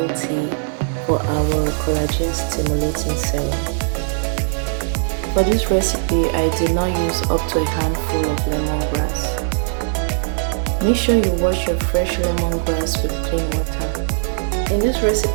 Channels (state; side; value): silent; left; 62 dB below the other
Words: tea for our collagen stimulating serum. For this recipe, I did not use up to a handful of lemongrass. Make sure you wash your fresh lemongrass with clean water. In this